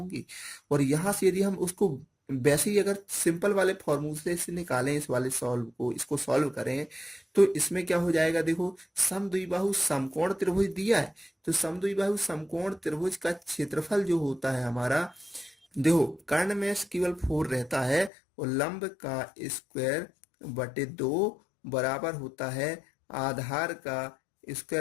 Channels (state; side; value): drops out; right; at 18.1 s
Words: और यहां से यदि हम उसको वैसे ही अगर सिंपल वाले फॉर्मूले से निकालें, इस वाले सॉल्व को, इसको सॉल्व करें तो इसमें क्या हो जाएगा, देखो समद्विबाहु समकोण त्रिभुज दिया है, तो समद्विबाहु समकोण त्रिभुज का क्षेत्रफल जो होता है हमारा, देखो कर्ण में केवल 4 रहता है और लंब का स्क्वायर बटे 2 बराबर होता है आधार का